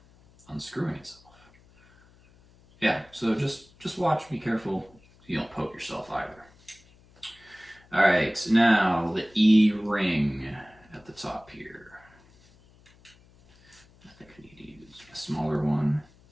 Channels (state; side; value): noise; left; hum, 28 dB below the sound